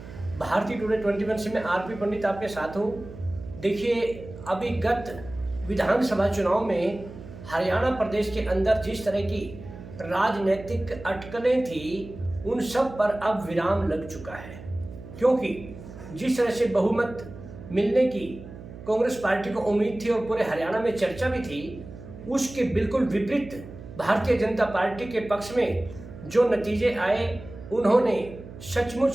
भारतीय टुडे 21 से मैं आरपी पंडित आपके साथ हूँ। देखिए, अभी गत विधानसभा चुनाव में हरियाणा प्रदेश के अंदर जिस तरह की राजनीतिक अटकलें थी, उन सब पर अब विराम लग चुका है। क्योंकि जिस तरह से बहुमत मिलने की कांग्रेस पार्टी को उम्मीद थी और पूरे हरियाणा में चर्चा भी थी, उसके बिल्कुल विपरीत भारतीय जनता पार्टी के पक्ष में जो नतीजे आए, उन्होंने सचमुच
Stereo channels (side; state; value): right; noise; hum, 15 dB below the sound